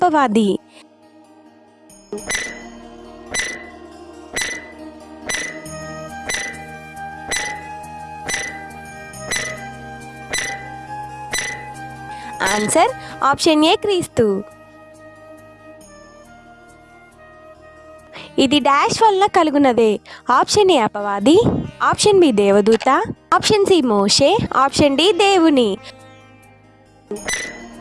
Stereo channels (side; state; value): both; identical; correlation 1.00